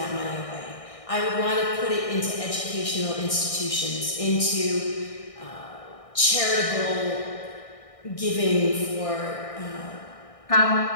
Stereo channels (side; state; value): right; late; 1.6 ms